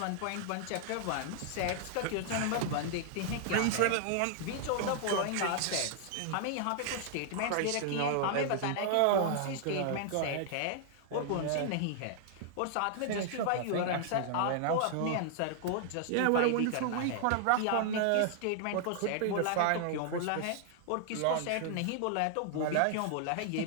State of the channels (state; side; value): different; both; correlation 0.00